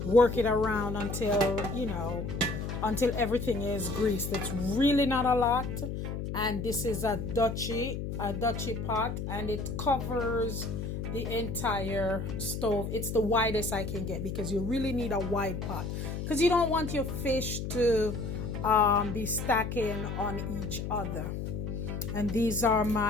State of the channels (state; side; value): noise; left; hum, 4 dB below the sound